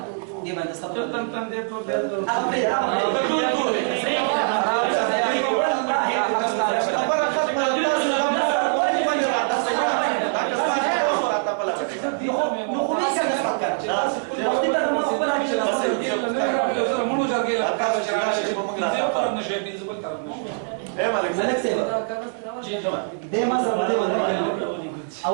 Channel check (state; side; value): silent; left; 63 dB below the other